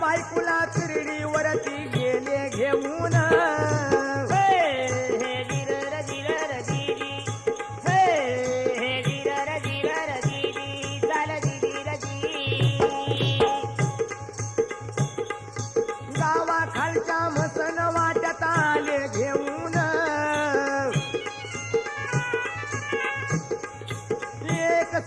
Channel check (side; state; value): both; identical; correlation 1.00